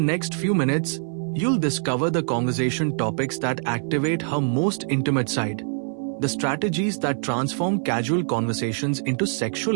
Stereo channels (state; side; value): silent; left; 61 dB below the other